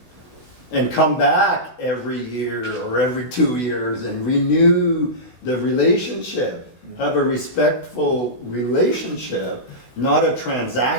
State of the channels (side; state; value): right; late; 16 ms